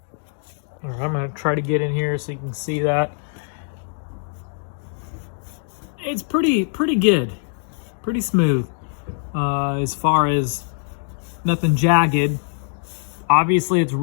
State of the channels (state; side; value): silent; right; digital silence